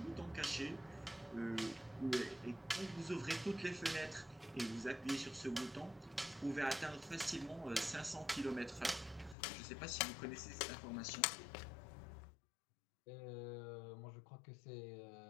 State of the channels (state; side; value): drops out; right; at 9.3 s